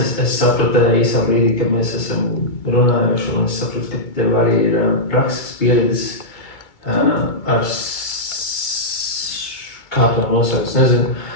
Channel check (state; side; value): late; right; 2.3 ms